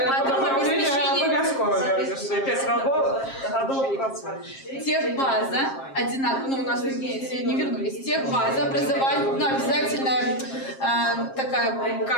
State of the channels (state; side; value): late; right; 7.5 ms